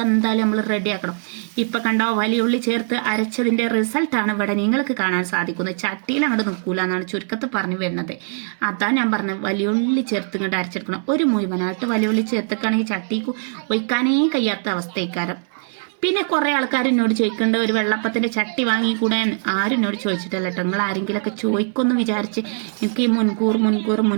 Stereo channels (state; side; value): silent; left; digital silence